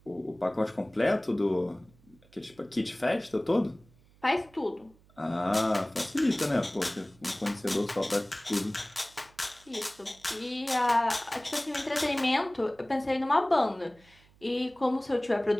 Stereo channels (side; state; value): right; noise; hum, 29 dB below the sound